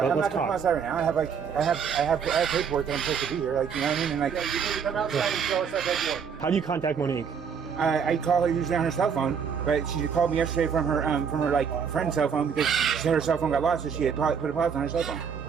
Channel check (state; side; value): quieter; left; 6.8 dB